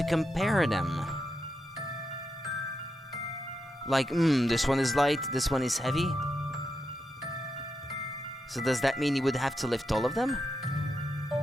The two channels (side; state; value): both; normal; correlation 0.85